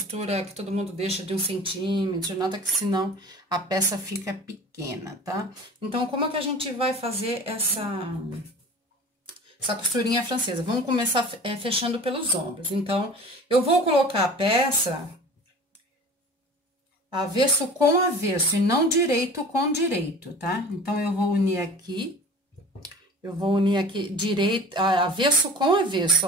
que todo mundo deixa de 1 centímetro, nada, que senão a peça fica pequena, tá? Então, como é que a gente vai fazer essa costurinha francesa? Vamos começar fechando pelos ombros. Então, eu vou colocar a peça avesso com avesso e não direito com direito, tá? Então, eu vou unir aqui direito, avesso com avesso,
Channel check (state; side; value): normal; both; correlation 0.40